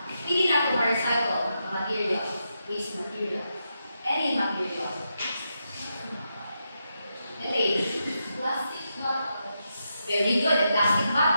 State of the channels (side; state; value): both; inverted; correlation -0.85